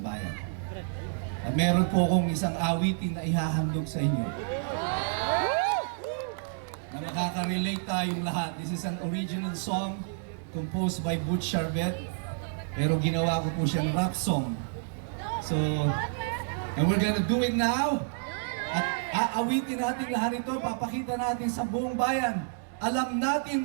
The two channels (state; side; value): silent; left; digital silence